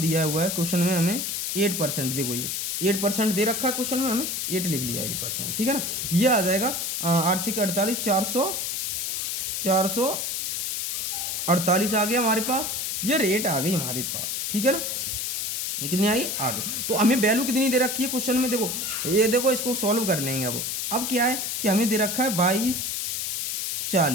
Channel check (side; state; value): left; noise; hiss, 2 dB below the sound